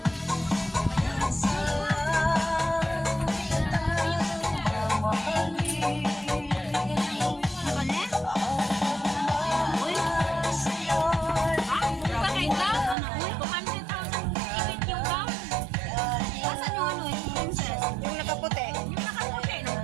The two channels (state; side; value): drops out; left; at 13.0 s